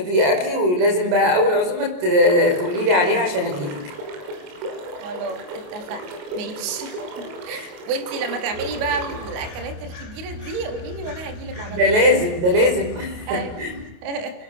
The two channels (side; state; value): left; late; 28 ms